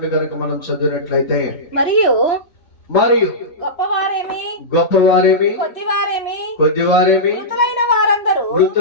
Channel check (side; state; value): right; late; 2.9 ms